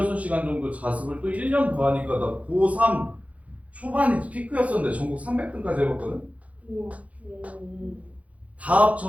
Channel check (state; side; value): late; left; 0.067 ms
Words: 정도 자습을 또 1년 더 하니까 나 고3 초반이 피크였었는데 전국 300등까지 해봤거든? 우와. 다